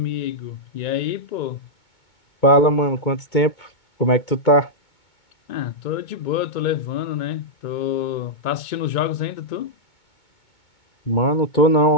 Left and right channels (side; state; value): right; late; 2.2 ms